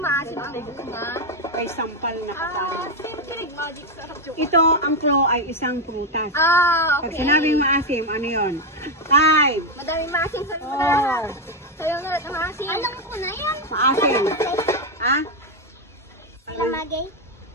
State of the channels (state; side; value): normal; both; correlation 0.06